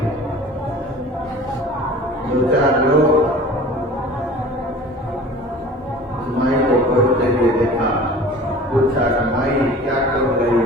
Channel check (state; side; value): normal; both; correlation 0.42